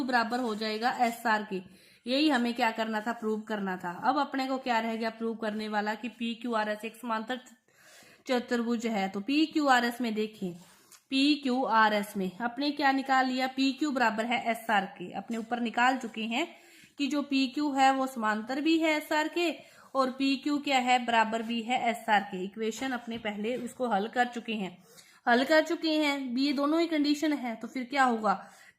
बराबर हो जाएगा एस आर के। यही हमें क्या करना था, प्रूव करना था। अब अपने को क्या रह गया प्रूव करने वाला, कि पी क्यू आर एस एक समांतर चतुर्भुज है। तो पी क्यू आर एस में देखिए, पी क्यू आर एस में अपने क्या निकाल लिया, पी क्यू बराबर है एस आर के। अपने ऊपर निकाल चुके हैं कि जो पी क्यू है वो समांतर भी है एस आर के, और पी क्यू क्या है, बराबर भी है एस आर के। इक्वेशन अपने पहले उसको हल कर चुके हैं। ये दोनों ही कंडीशन है। तो फिर क्या होगा,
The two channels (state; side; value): identical; both; correlation 1.00